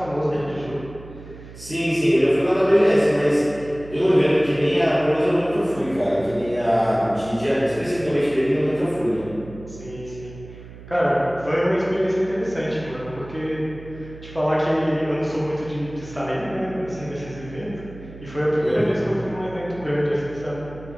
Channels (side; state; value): right; noise; hum, 16 dB below the sound